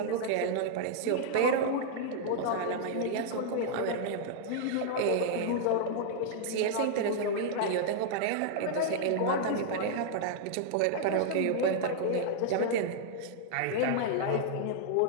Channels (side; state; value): both; different; correlation -0.01